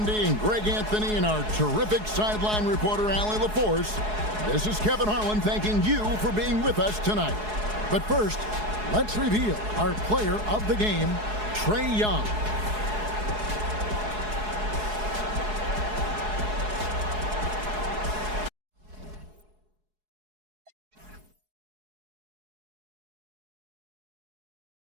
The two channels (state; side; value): late; left; 4.7 ms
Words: and Greg Anthony and our terrific sideline reporter, Allie LaForce, this is Kevin Harlan thanking you for being with us tonight. But first, let's reveal our player of the game, Trae Young.